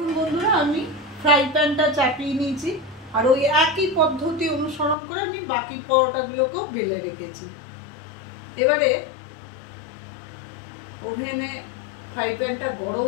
বন্ধুরা, আমি ফ্রাই প্যানটা চাপিয়ে নিয়েছি আর ওই একই পদ্ধতি অনুসরণ করে আমি বাকি পরোটাগুলোকেও বেলে রেখেছি। এবারে ওভেনে ফ্রাই প্যানটা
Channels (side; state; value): right; drops out; at 5.0 s